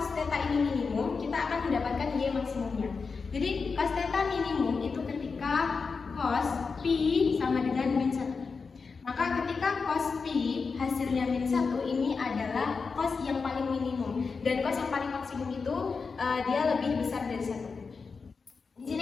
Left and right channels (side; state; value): right; quieter; 4.9 dB